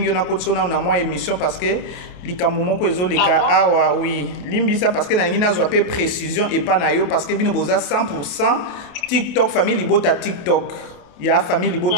na kotsona na moi émission parce que likambo moko ezoleka awa oui. Limbi ça parce que na ngina zo pe précision et pas na yo parce que bino boza 100% TikTok famille Bota TikTok. Il y a famille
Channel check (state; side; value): late; right; 28 ms